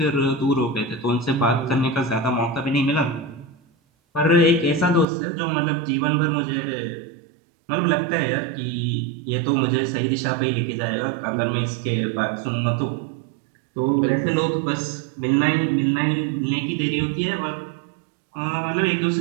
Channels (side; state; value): left; drops out; at 5.1 s